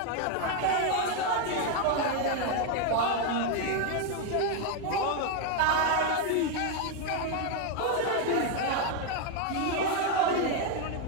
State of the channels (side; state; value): both; different; correlation 0.01